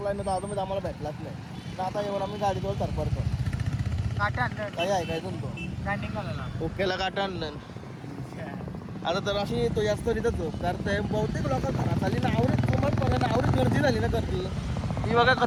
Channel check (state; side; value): identical; both; correlation 1.00